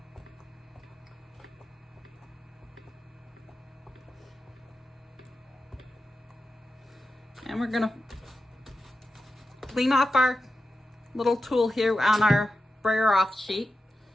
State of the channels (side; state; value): both; normal; correlation 0.91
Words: And we're going to clean off our little tool here on our brayer off sheet.